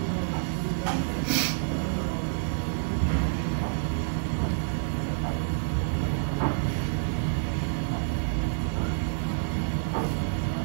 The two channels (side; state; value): left; silent; 59 dB below the other